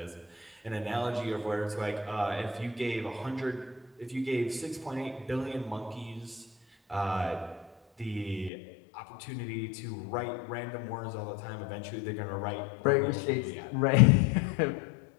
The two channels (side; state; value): right; drops out; at 8.5 s